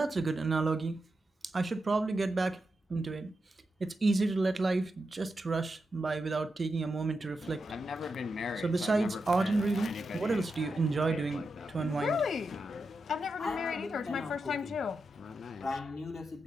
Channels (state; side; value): normal; both; correlation 0.87